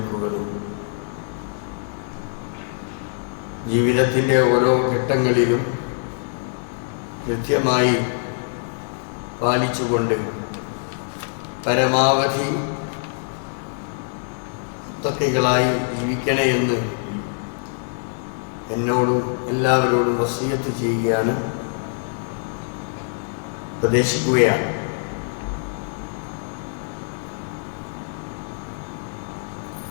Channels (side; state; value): right; silent; digital silence